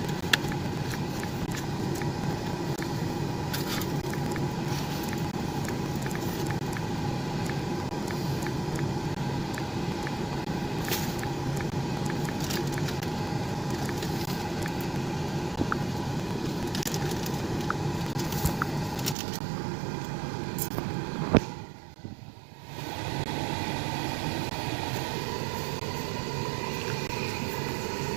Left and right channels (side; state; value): left; drops out; at 19.2 s